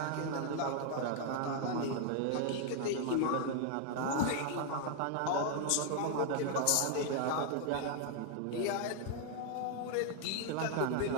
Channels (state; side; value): different; both; correlation 0.00